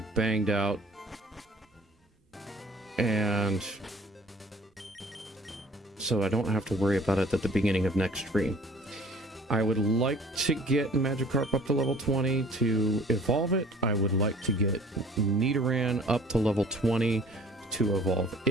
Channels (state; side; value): normal; both; correlation 0.51